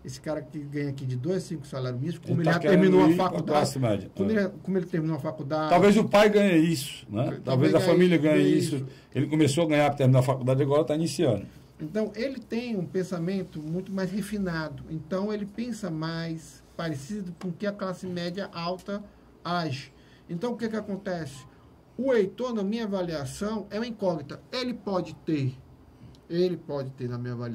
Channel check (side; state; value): both; identical; correlation 1.00